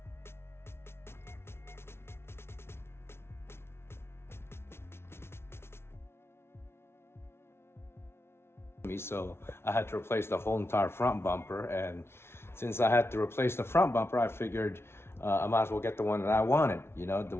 me, so I had to replace the whole entire front bumper. And since I had to replace the front bumper, I figured I might as well get the one that I wanted, you know, the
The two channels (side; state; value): right; late; 0.12 ms